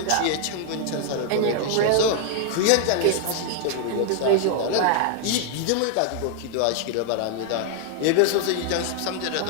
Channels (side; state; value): both; different; correlation 0.00